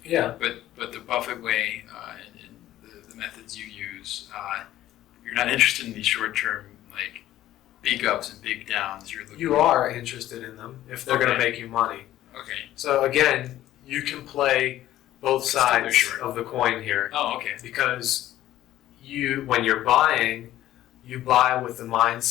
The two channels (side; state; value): right; quieter; 13.7 dB